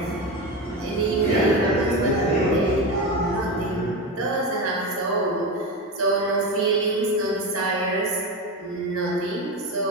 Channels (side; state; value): both; normal; correlation 0.19